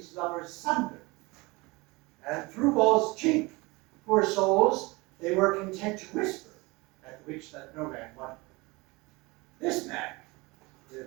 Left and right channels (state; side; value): quieter; left; 24.1 dB